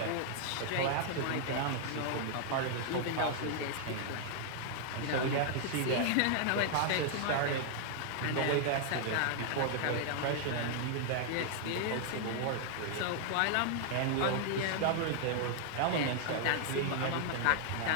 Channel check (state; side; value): different; both; correlation 0.00